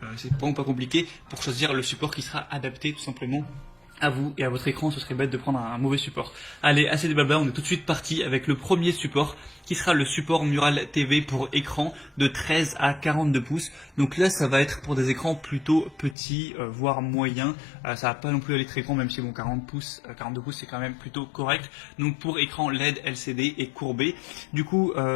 C'est vraiment pas compliqué pour choisir le support qui sera adapté tout simplement à vous et à votre écran. Ce serait bête de prendre un mauvais support. Allez, assez de blabla, on est tout de suite parti avec le premier support qui sera le support Mural TV pour écran de 13 à 42 pouces. Donc là, ça va être pour des écrans plutôt petits, voire moyens. Ça va pas non plus aller très grand, même si bon, 40 pouces, 42 pouces, c'est quand même plutôt correct. Donc pour écran LED, LCD et courbé. Du coup,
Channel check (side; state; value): right; drops out; at 16.2 s